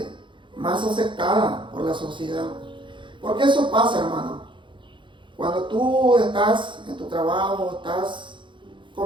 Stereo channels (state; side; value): late; left; 0.23 ms